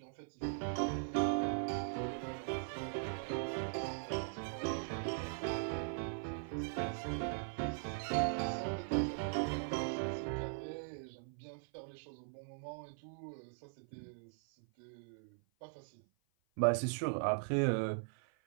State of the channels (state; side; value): silent; left; 51 dB below the other